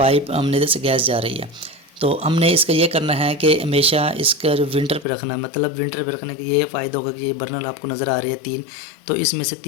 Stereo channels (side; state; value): right; drops out; at 5.1 s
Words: हमने इधर से गैस जा रही है। तो हमने इसका ये करना है कि हमेशा इसका जो विंटर पे रखना है, मतलब विंटर पे रखने का ये फ़ायदा होगा कि ये बर्नल आपको नज़र आ रही है 3, तो इसमें से